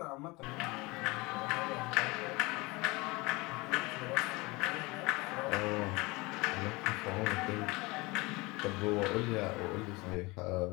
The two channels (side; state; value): right; quieter; 24.0 dB